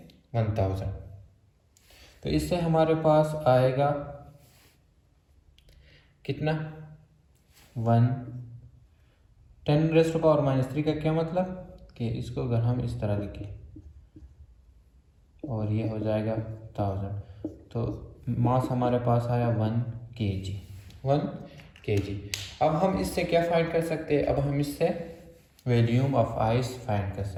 1000। तो इससे हमारे पास आएगा कितना, 10⁻³ का क्या मतलब कि इसको अगर हम इस तरह लिखें और ये हो जाएगा 1000, तो मास हमारे पास आया 1 kg। 1 kg। अब हम इससे क्या फाइंड कर सकते हैं, अब हम इससे वॉल्यूम ऑफ आइस फाइंड कर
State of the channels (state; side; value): identical; both; correlation 1.00